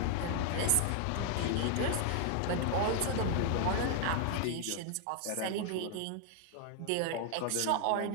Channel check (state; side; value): different; both; correlation 0.00